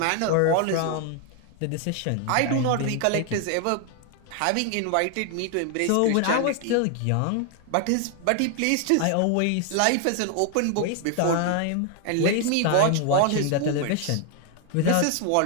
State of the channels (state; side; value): different; both; correlation 0.00